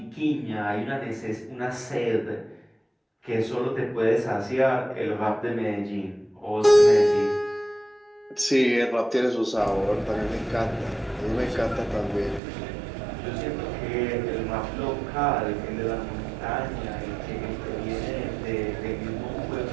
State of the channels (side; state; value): left; drops out; at 12.4 s